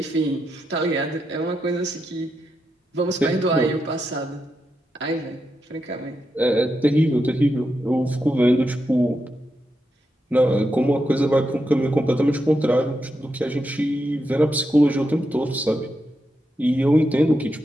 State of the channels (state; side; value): normal; both; correlation 0.85